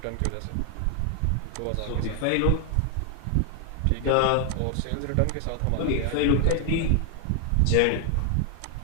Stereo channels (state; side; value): different; both; correlation 0.00